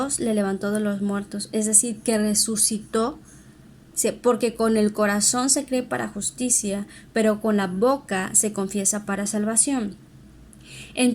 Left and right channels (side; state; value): both; identical; correlation 1.00